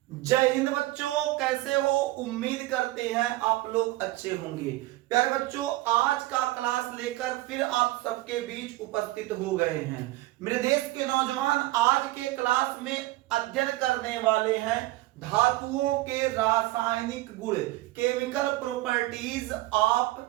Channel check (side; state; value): left; quieter; 18.2 dB